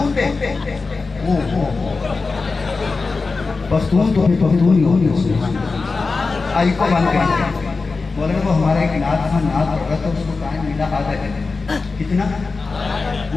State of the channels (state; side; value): quieter; right; 4.1 dB